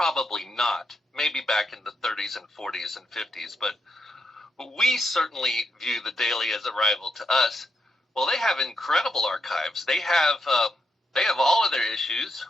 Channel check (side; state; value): both; normal; correlation 0.81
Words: not. Maybe back in the 30s and 40s and 50s, but we certainly view the Daily as a rival to us. Well, they have incredible archives. They have all of their issues,